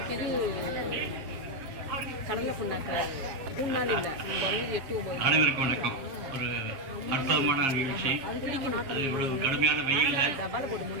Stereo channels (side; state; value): left; late; 7.5 ms